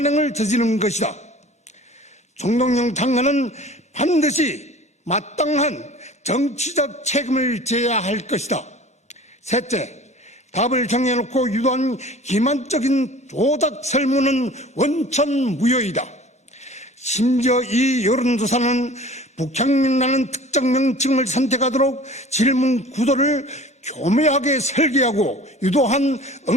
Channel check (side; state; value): both; normal; correlation 0.44